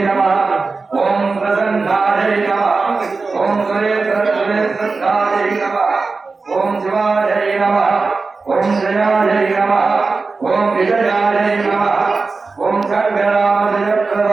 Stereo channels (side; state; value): left; quieter; 4.1 dB